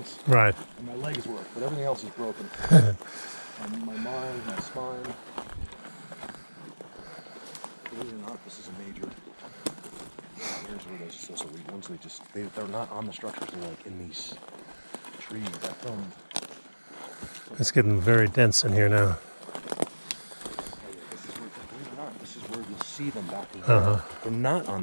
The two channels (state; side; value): inverted; both; correlation -1.00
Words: Right. and my legs work, but everything else is broken. My mind, my spine. Believe it or not, this is a major. Here's where those weak ones. They're not on the structures. They're like in these trees. I filmed. It's getting very dense in here now. This is where, believe it or not, this is where you'll see them back in here. They're not